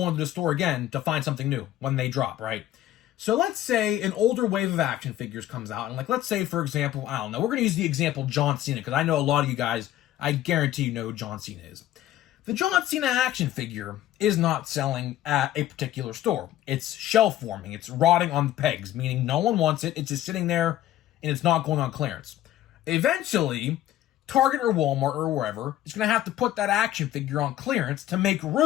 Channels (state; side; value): quieter; right; 13.3 dB